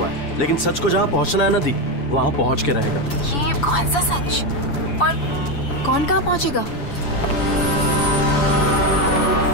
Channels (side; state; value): right; late; 7.0 ms